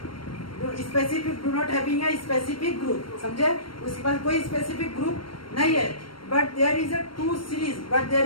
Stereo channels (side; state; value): right; late; 0.73 ms